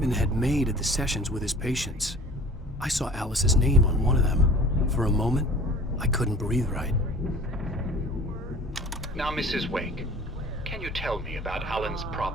had made at the sessions with his patients. I saw Alice's name on one of them. For a moment, I couldn't breathe right. Now, Mrs. Wake, can you tell me about Alan's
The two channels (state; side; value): normal; both; correlation 0.44